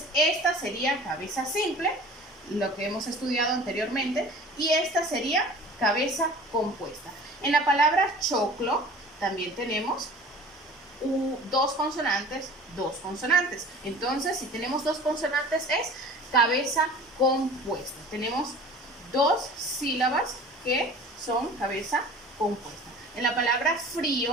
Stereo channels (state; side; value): normal; both; correlation 0.43